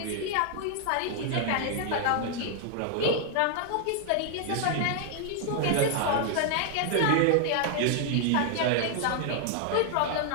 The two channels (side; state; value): both; different; correlation 0.00